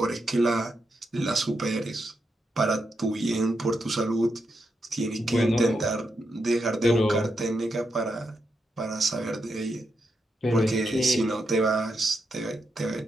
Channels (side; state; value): both; normal; correlation 0.84